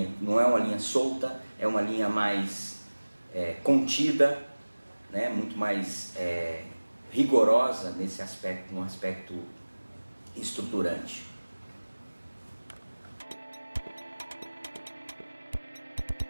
solta, é uma linha mais contida, né? Muito mais rigorosa nesse aspecto, num aspecto estruturante.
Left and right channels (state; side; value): inverted; both; correlation -1.00